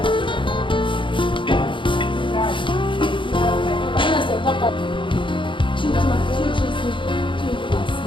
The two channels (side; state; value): right; late; 0.24 ms